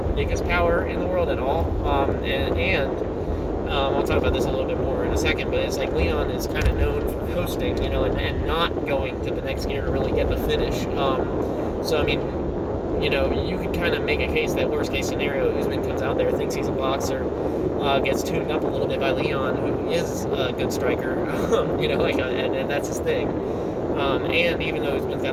biggest power in the world at all. I'll talk about this a little bit more in a second, but it's like Leon is kind of known for coasting, and not going to the next gear to really get the finish. So, I mean, you could kind of make a case that worst case scenario, Usman comes out there, thinks he's a boxer, gets tuned up a little bit by Leon, who is a good striker, and that's his thing. And even though Usman's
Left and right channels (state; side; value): identical; both; correlation 1.00